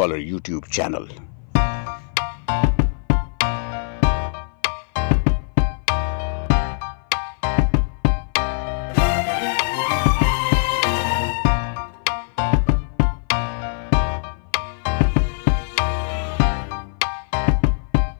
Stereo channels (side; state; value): right; silent; 58 dB below the other